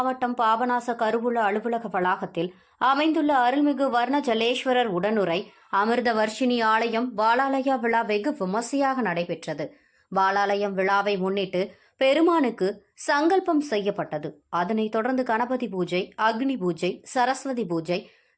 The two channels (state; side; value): identical; both; correlation 1.00